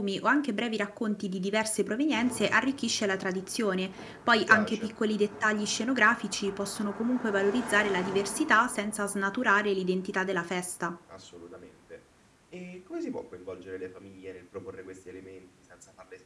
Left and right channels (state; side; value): identical; both; correlation 1.00